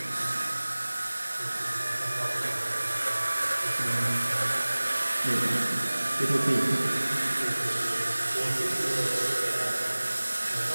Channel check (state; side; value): inverted; both; correlation -1.00